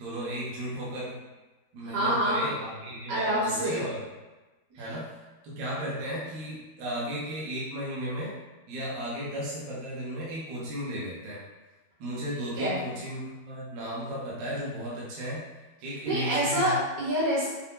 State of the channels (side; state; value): left; late; 12 ms